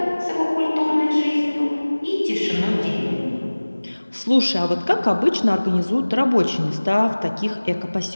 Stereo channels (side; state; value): both; inverted; correlation -1.00